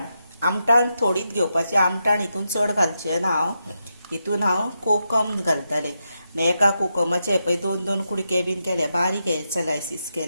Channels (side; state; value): both; inverted; correlation -0.85